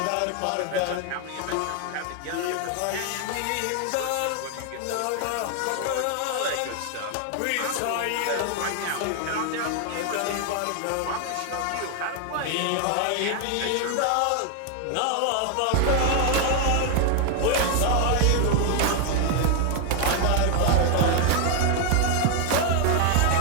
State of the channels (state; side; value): different; both; correlation 0.00